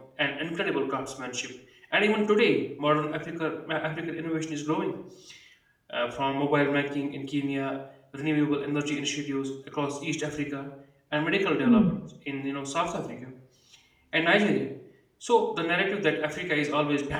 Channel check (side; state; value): both; identical; correlation 1.00